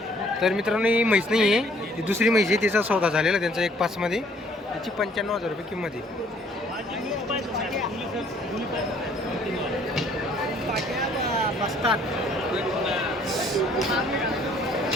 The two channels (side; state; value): both; normal; correlation 0.60